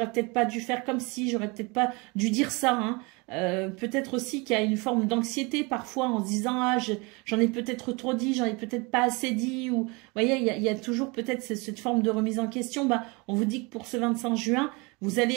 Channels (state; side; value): quieter; left; 27.8 dB